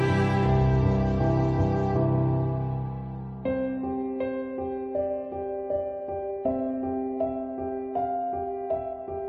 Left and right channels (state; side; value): identical; both; correlation 1.00